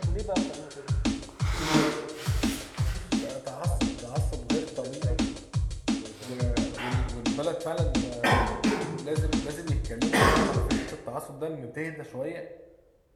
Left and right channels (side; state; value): both; identical; correlation 1.00